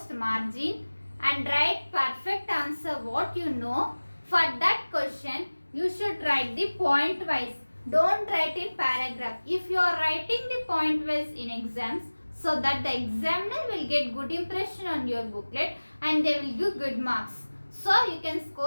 margin and write perfect answer what you know. For that question, you should write the point wise. Don't write in paragraph. If you are writing the point wise in exams, so that the examiner will get good impression on your booklet and they will give good marks. So you can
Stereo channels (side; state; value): both; inverted; correlation -1.00